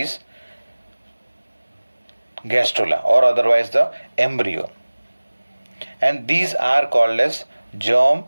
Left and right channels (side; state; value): both; inverted; correlation -1.00